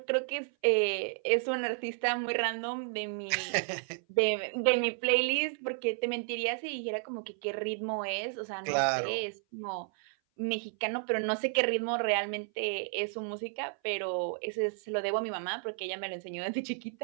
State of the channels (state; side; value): silent; left; 56 dB below the other